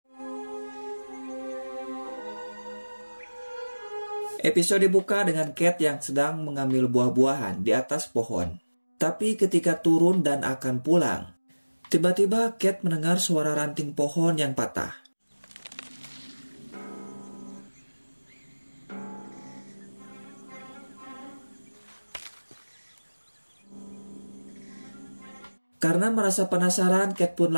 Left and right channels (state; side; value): inverted; both; correlation -1.00